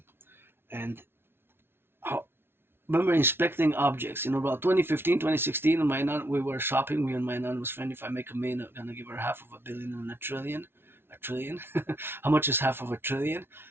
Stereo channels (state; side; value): late; left; 0.11 ms